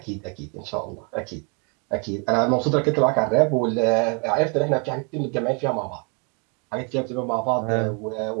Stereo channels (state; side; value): quieter; left; 35.7 dB